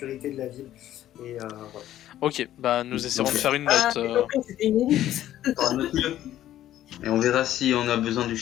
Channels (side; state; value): right; quieter; 12.7 dB